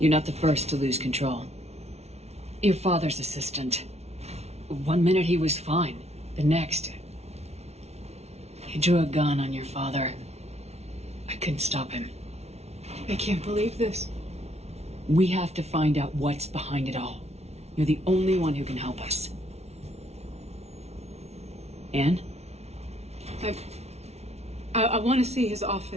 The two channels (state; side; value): late; left; 0.31 ms